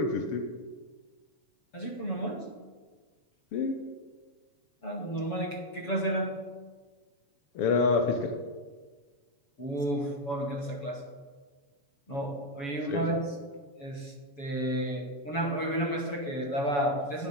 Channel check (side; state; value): right; late; 7.1 ms